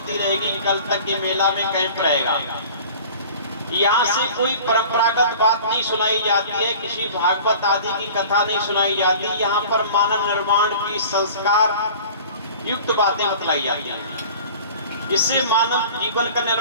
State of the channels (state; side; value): inverted; both; correlation -0.43